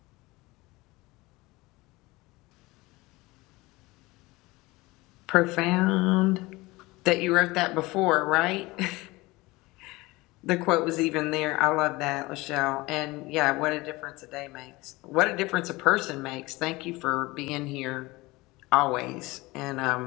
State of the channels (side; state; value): right; quieter; 21.6 dB